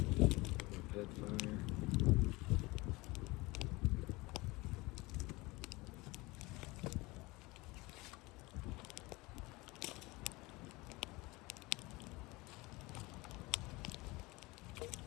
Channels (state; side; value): quieter; right; 22.7 dB